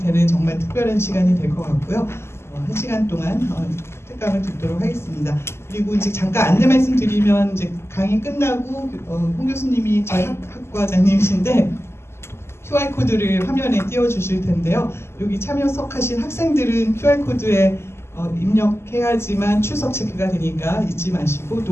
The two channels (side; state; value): right; late; 0.12 ms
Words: 정말 특별한 시간이 될 것 같고요. 1시간 동안 특강을 듣도록 하겠습니다. 그리고 이제 잠깐 안내 말씀드리면 이제 강의 끝나고 홍 교수님이 저희 학과장님이신데 QR 코드를 화면에 띄워주실 텐데요. 여기 참여석하신 학생들은 QR 코드에 입력해야지만 출석 체크가 되니까 잊지 마시고